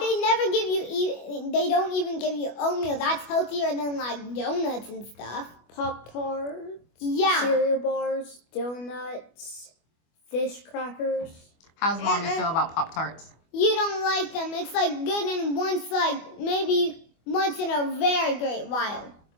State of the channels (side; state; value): right; late; 24 ms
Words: don't even give you oatmeal. That's healthier than, like, donuts and stuff. Pop-Tarts, Yeah. cereal bars, donuts, fish crackers. How's Mommy feel about Pop-Tarts? You don't like them. It's, like, good in maybe once in a very great while.